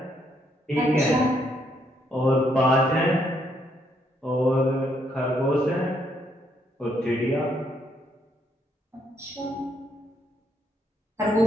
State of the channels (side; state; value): both; normal; correlation 0.73